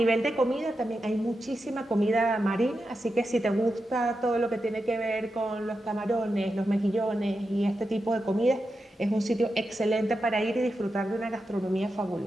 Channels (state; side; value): normal; both; correlation 0.89